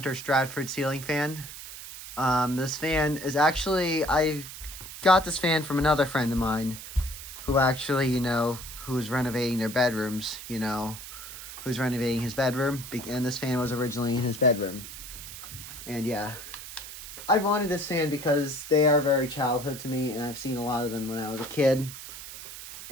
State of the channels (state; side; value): noise; right; hiss, 12 dB below the sound